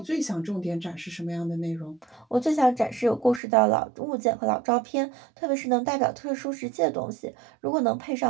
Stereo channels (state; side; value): drops out; left; at 3.4 s